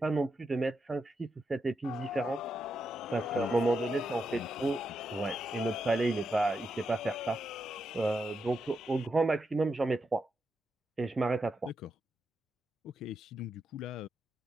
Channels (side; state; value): both; normal; correlation 0.85